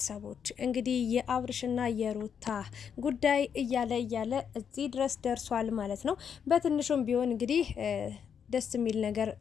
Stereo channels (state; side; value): quieter; right; 7.5 dB